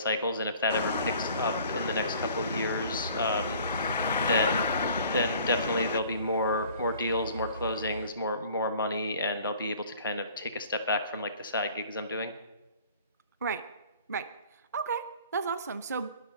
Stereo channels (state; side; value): inverted; both; correlation -0.51